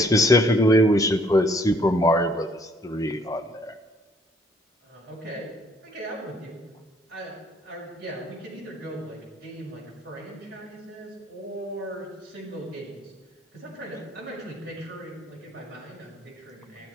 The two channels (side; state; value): both; normal; correlation 0.62